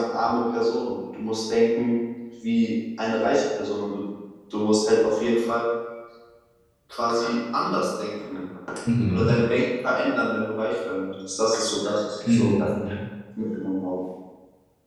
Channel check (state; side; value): identical; both; correlation 1.00